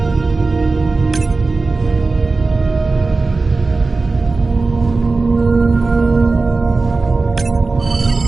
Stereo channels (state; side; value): quieter; left; 3.8 dB